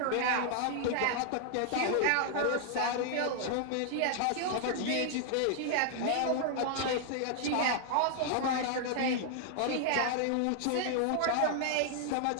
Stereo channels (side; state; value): both; different; correlation -0.01